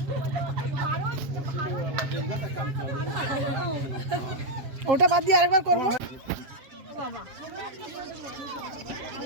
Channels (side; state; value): left; late; 7.5 ms